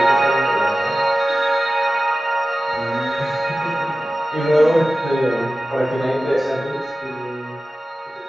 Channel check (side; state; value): both; normal; correlation 0.95